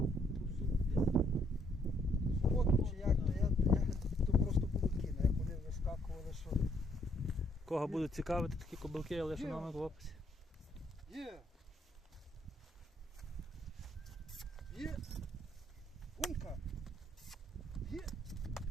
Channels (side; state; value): both; normal; correlation 0.70